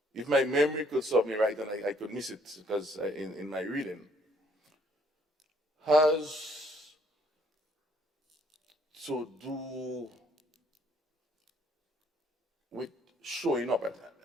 if my memory could serve me right, and I could miss it because in my reading, has to do with showing up.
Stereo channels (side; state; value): both; normal; correlation 0.65